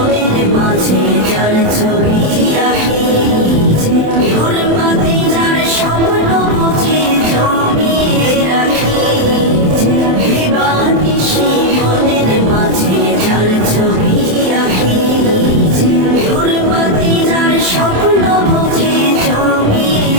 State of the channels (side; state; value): left; late; 27 ms